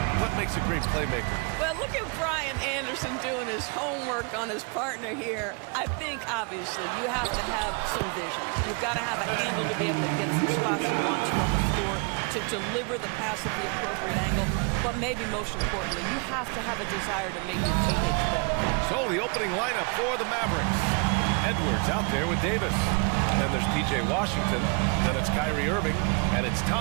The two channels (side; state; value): left; quieter; 34.0 dB